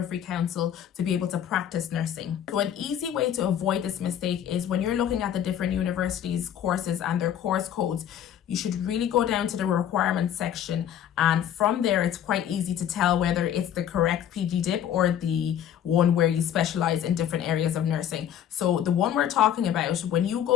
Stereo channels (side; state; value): right; quieter; 10.0 dB